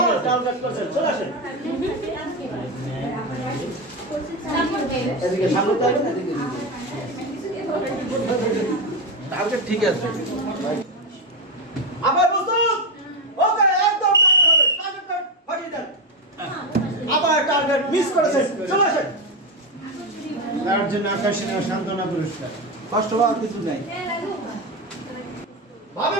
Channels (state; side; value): normal; both; correlation 0.13